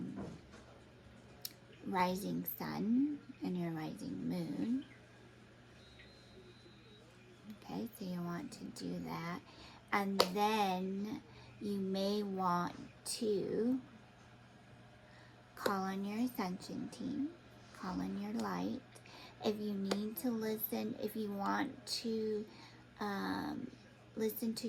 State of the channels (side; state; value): both; identical; correlation 1.00